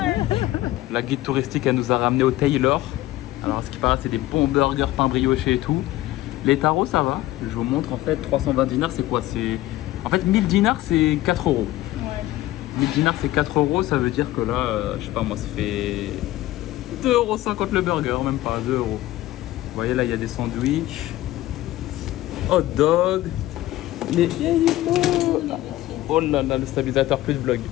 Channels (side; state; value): right; quieter; 16.0 dB